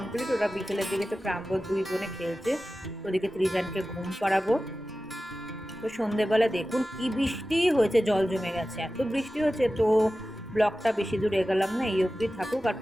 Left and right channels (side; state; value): both; normal; correlation 0.95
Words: ওরা বিকেলের দিকে তো প্রাঙ্গণ দুই বোনে খেলছে, ওদিকে ত্রিজানকে ঘুম করাবো। তো সন্ধেবেলা দেখুন কি বৃষ্টি হয়েছে, জল জমে গেছে, এত বৃষ্টি হচ্ছে। তো ব্লগটা বেশি দূর এগোলাম না, এই অবধি থাকুক। আর